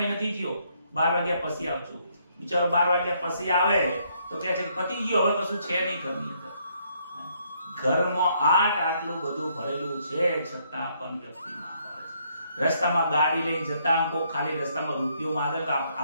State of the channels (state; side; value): inverted; both; correlation -0.70